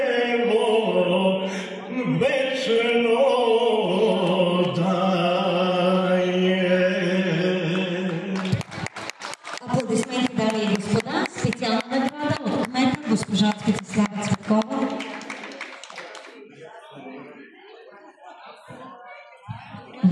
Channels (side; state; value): both; identical; correlation 1.00